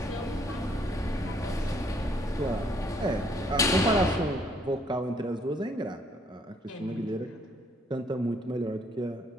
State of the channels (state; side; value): normal; both; correlation 0.66